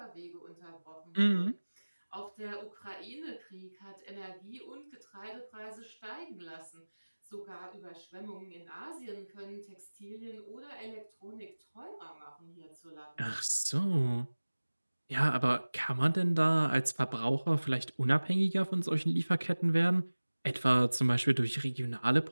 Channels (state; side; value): inverted; both; correlation -1.00